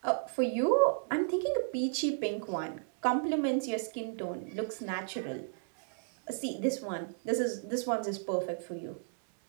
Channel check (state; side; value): silent; left; digital silence